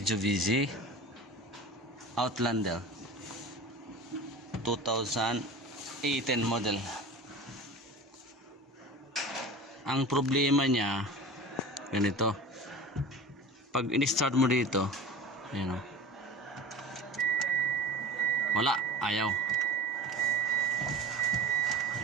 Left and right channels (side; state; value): both; normal; correlation 0.36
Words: Outlander 2018 model. Ang problema niya ganito, pag in-start mo dito, ayan o, wala, ayaw.